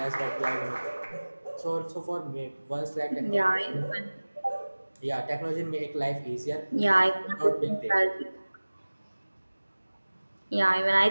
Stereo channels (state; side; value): inverted; both; correlation -1.00